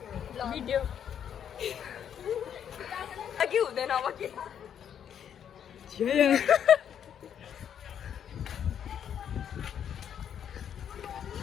भिडियो अघि हुँदैन अब के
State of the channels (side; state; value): right; quieter; 8.9 dB